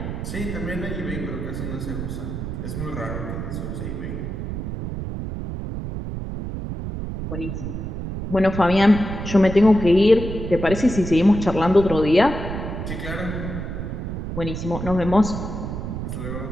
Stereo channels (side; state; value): right; noise; rumble, 5 dB below the sound